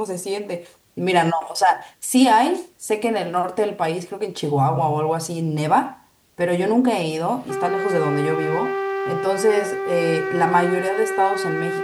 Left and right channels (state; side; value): identical; both; correlation 1.00